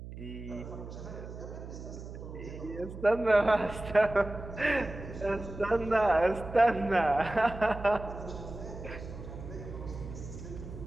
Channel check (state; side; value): noise; right; hum, 11 dB below the sound